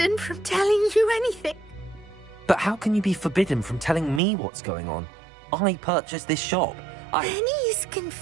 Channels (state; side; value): drops out; left; at 4.2 s